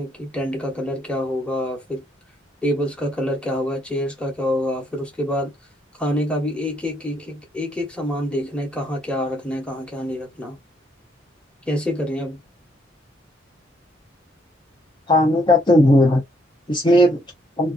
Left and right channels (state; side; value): normal; both; correlation 0.70